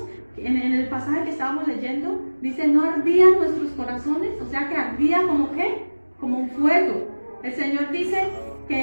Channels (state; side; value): inverted; both; correlation -1.00